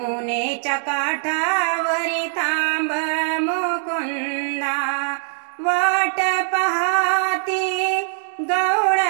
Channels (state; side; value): silent; left; digital silence